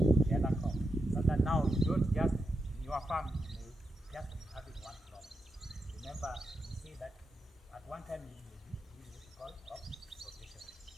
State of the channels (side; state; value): both; normal; correlation 0.86